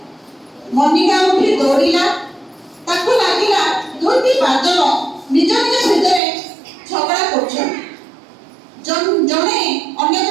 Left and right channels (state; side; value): drops out; left; at 6.2 s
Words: ମନିକା ଉଠି ଦୌଡ଼ିଲା। ତାକୁ ଲାଗିଲା ଦୁଇଟି ବାଦଲ ନିଜ ନିଜ ଭିତରେ ଝଗଡ଼ା କରୁଛନ୍ତି। ଜଣେ ଅନ୍ୟ